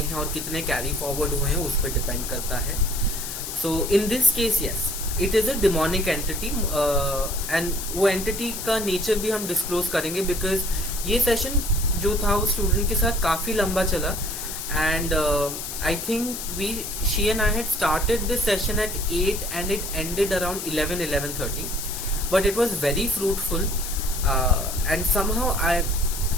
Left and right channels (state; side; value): noise; left; hiss, 7 dB below the sound